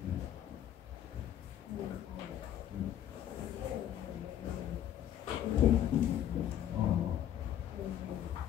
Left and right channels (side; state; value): right; quieter; 10.9 dB